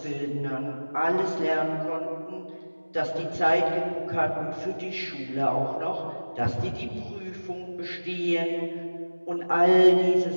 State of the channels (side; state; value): both; inverted; correlation -1.00